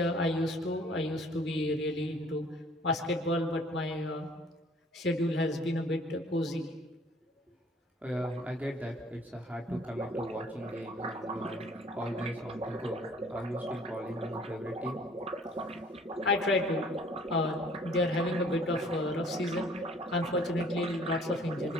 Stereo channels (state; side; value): normal; both; correlation 0.56